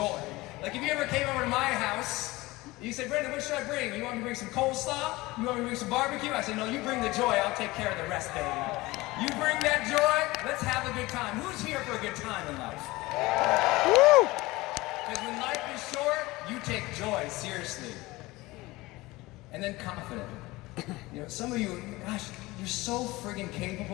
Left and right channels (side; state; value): right; quieter; 20.5 dB